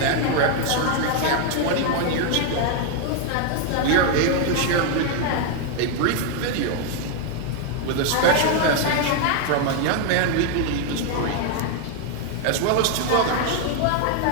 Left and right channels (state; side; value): different; both; correlation 0.00